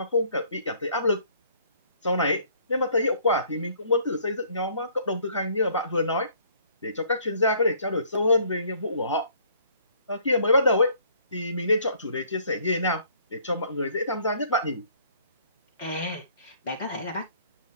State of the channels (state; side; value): inverted; both; correlation -0.61